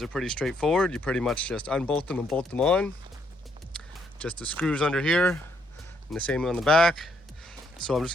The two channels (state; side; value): normal; both; correlation 0.72